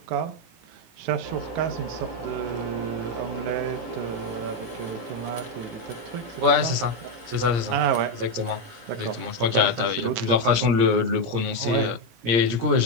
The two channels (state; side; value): late; left; 17 ms